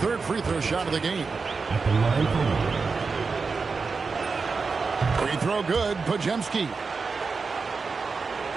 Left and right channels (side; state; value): left; quieter; 4.7 dB